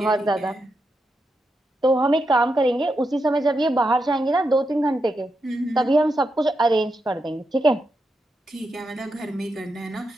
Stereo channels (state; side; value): normal; both; correlation 0.85